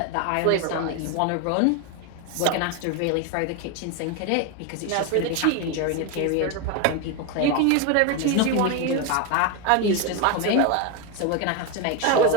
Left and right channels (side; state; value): both; different; correlation 0.02